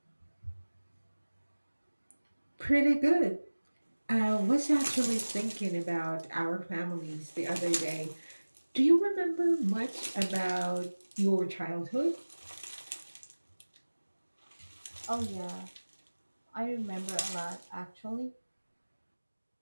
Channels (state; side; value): inverted; both; correlation -1.00